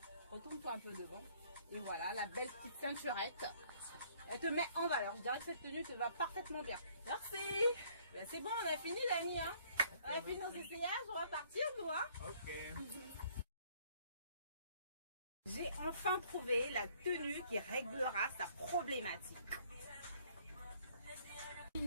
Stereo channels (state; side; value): inverted; both; correlation -0.61